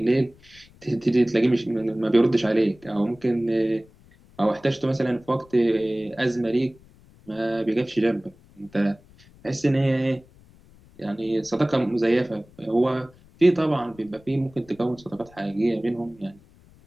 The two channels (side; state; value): left; noise; rumble, 26 dB below the sound